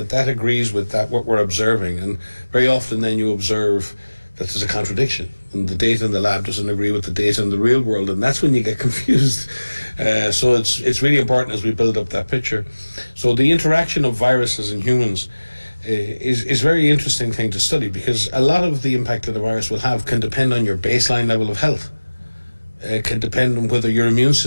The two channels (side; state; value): both; inverted; correlation -1.00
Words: agrees with that, what we're observing. And very often then you observe that there's a contradiction, and the data in the lab doesn't agree with the data in the real world, and that's when you get confused. So it's really important as we build up that picture. So the interaction of viruses and humans is a very interesting thing to study, because a lot of the impact that the virus will have can depend on your baseline level of health. It can depend on whether your immune